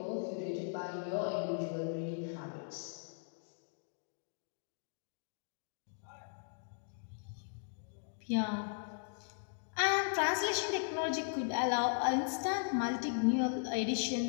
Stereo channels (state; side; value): silent; right; digital silence